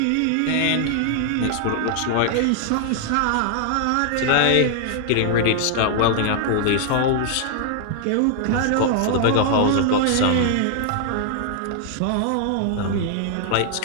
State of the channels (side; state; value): both; different; correlation 0.00